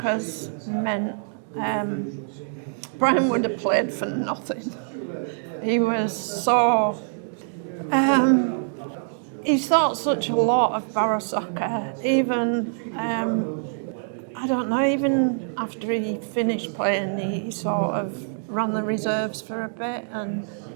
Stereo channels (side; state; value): left; silent; digital silence